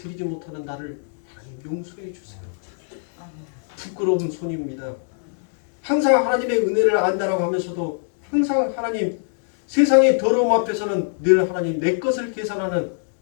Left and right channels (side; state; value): right; silent; digital silence